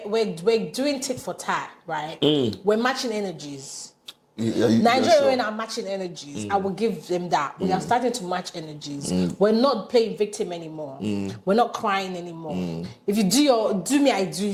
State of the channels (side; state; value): both; identical; correlation 1.00